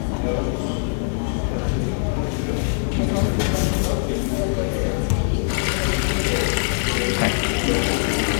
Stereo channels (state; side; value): silent; right; 63 dB below the other